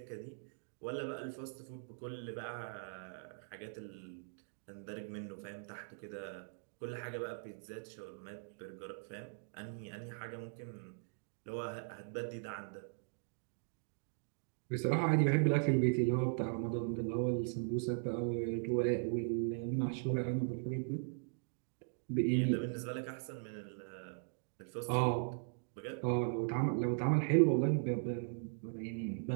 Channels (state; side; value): silent; left; digital silence